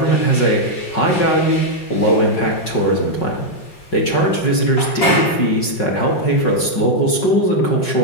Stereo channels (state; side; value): late; right; 5.4 ms